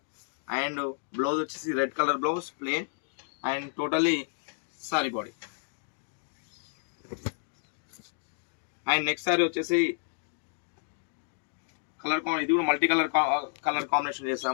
అండ్ బ్లౌజ్ వచ్చేసి red colour blouse plain and totally sorry body. And next sorry వచ్చేసి కలర్ ఇది కూడా మల్టీ కలర్ కాంబినేషన్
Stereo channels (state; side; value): silent; right; digital silence